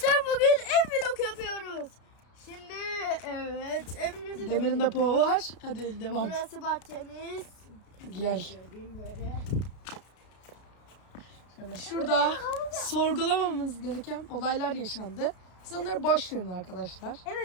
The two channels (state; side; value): late; right; 33 ms